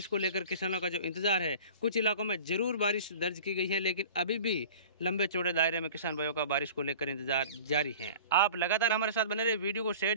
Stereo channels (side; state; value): both; inverted; correlation -0.41